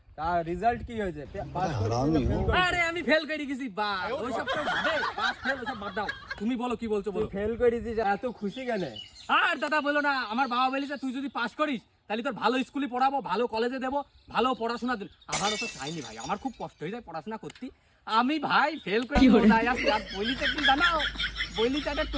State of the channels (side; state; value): both; identical; correlation 1.00